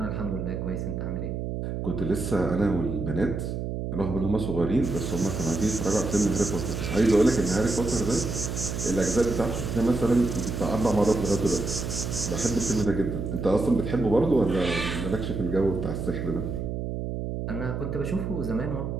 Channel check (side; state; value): right; noise; hum, 4 dB below the sound